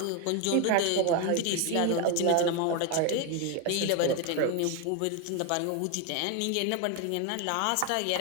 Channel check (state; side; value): different; both; correlation 0.01